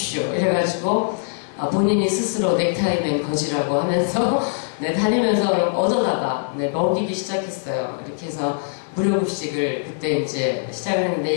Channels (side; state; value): right; silent; digital silence